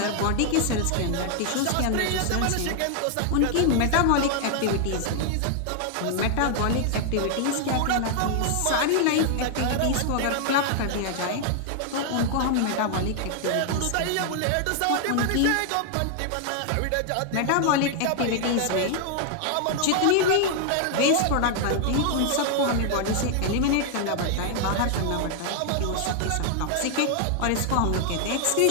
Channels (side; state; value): both; different; correlation 0.00